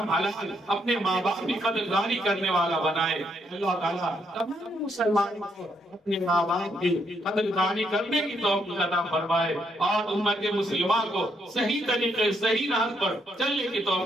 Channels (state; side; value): normal; both; correlation 0.75